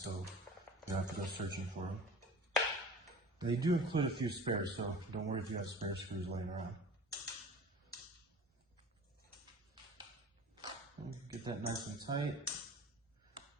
you don't have to go searching for them. They do include a few spares, so don't worry if you have spare screws laying around. Get that nice and tight.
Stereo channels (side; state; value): both; normal; correlation 0.40